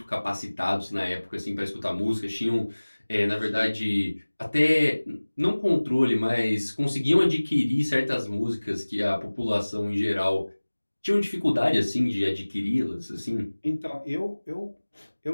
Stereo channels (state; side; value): inverted; both; correlation -1.00